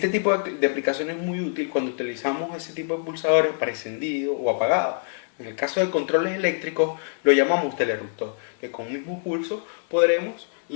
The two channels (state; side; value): silent; right; 62 dB below the other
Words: tipo de aplicación es muy útil cuando utilizamos ese tipo de pulsadores para encendido o apagado. En el caso de controles eléctricos lo llamamos teleruptor, que con un mismo pulso podremos